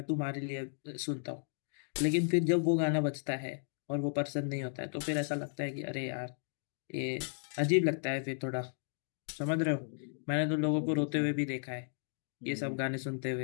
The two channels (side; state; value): right; silent; digital silence